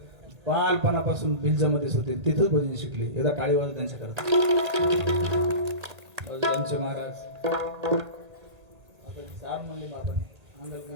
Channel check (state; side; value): late; left; 1.8 ms